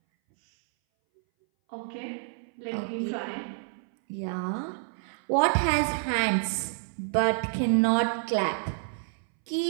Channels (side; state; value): left; silent; 59 dB below the other